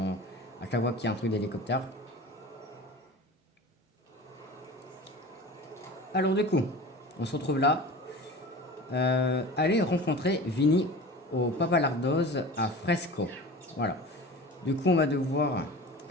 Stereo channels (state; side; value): normal; both; correlation 0.36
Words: à chaque fois qu'il y a un truc d'hélicoptère. Alors du coup, on se retrouve là. Allez rencontrer Vinny au Papalardos à Fresco. Voilà. Du coup, on va devoir